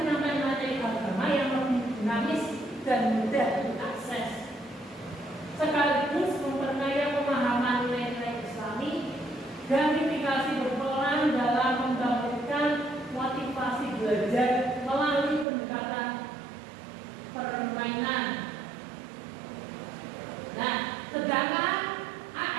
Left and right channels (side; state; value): left; drops out; at 15.5 s